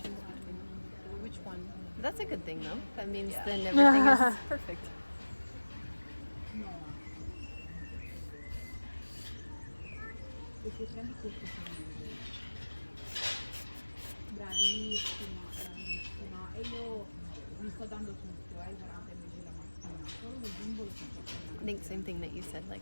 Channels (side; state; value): both; inverted; correlation -1.00